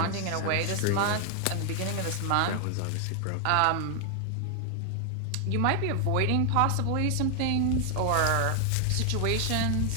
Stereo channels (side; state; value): both; different; correlation 0.00